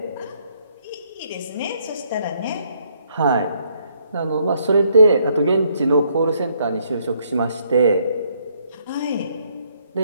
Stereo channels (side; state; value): both; inverted; correlation -0.70